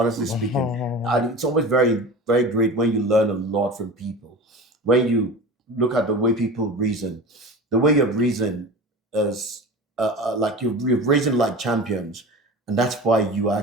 speaking. And it's always very, very great when you learn a lot from people. When you look at the way people reason, the way you reason is like you're reason like champions, and that's why you are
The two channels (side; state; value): both; normal; correlation 0.33